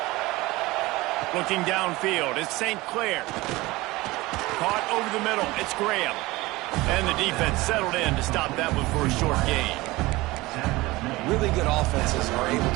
Looking downfield, it's St. Clair. Caught over the middle, it's Graham. And the defense settled in to stop that one for a short gain. Really good offenses are able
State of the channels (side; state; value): left; quieter; 20.4 dB